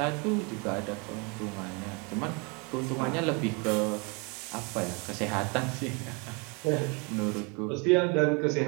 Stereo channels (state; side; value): quieter; left; 31.8 dB